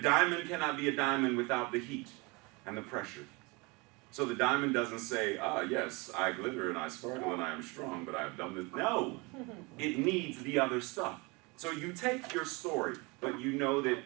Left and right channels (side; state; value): left; quieter; 27.0 dB